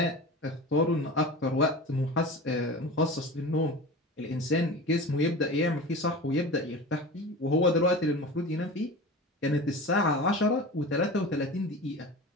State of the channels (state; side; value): normal; both; correlation 0.32